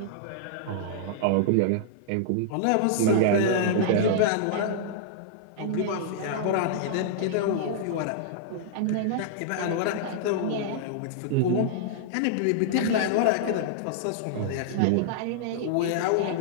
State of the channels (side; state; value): both; different; correlation -0.01